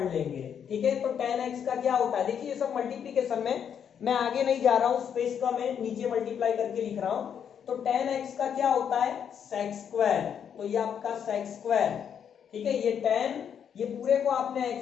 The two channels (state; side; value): quieter; right; 8.1 dB